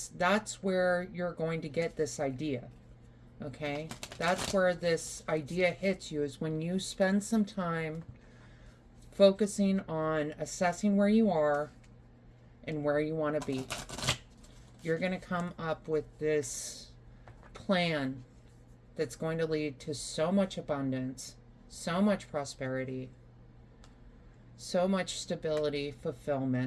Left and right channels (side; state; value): both; identical; correlation 1.00